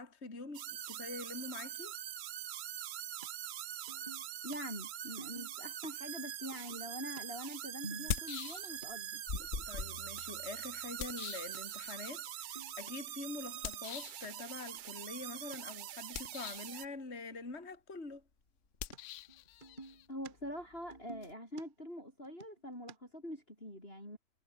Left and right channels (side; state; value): right; late; 2.3 ms